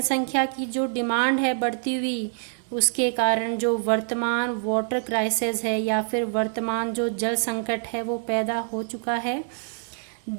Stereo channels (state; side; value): silent; left; 61 dB below the other